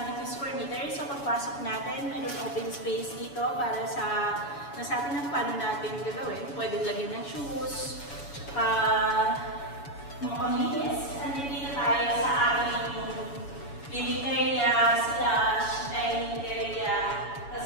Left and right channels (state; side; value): late; right; 7.1 ms